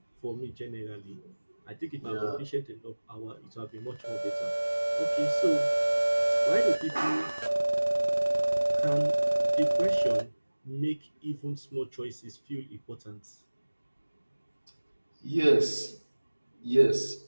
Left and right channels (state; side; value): inverted; both; correlation -1.00